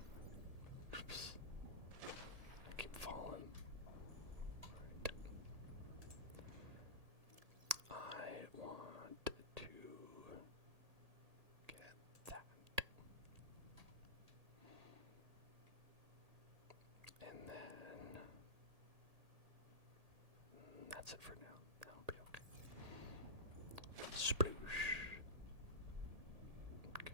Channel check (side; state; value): left; late; 1.7 ms